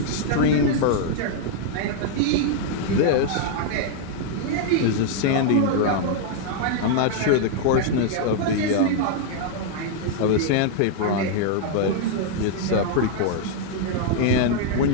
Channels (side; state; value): both; different; correlation -0.01